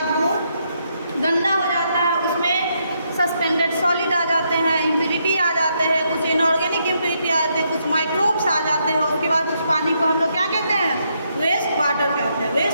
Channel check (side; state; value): both; inverted; correlation -0.77